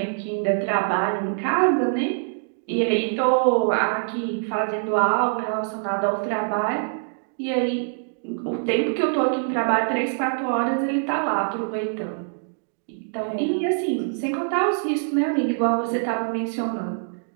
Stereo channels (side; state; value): left; silent; digital silence